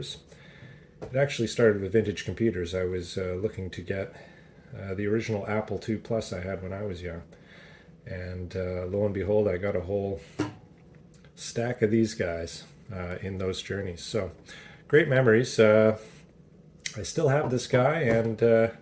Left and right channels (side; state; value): both; identical; correlation 1.00